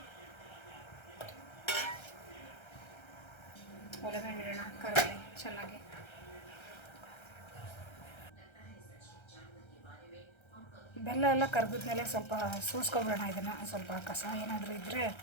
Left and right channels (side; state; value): right; late; 1.3 ms